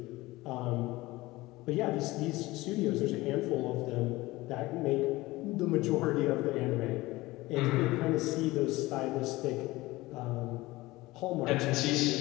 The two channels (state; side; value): quieter; right; 19.7 dB